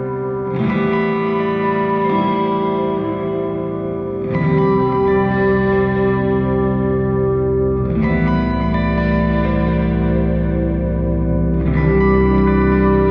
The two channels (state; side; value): identical; both; correlation 1.00